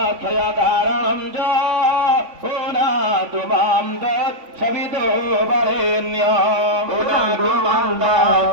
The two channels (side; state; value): left; late; 3.5 ms